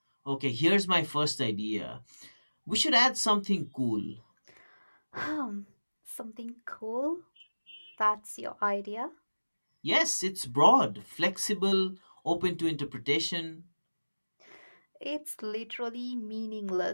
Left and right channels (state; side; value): inverted; both; correlation -1.00